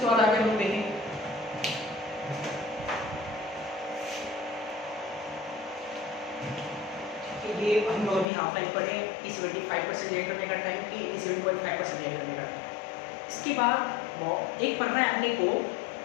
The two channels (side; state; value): right; drops out; at 8.3 s